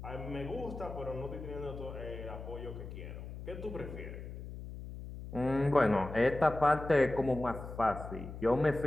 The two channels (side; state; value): left; noise; hum, 10 dB below the sound